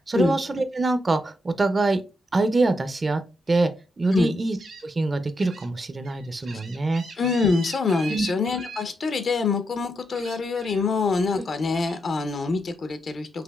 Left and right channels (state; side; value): normal; both; correlation 0.82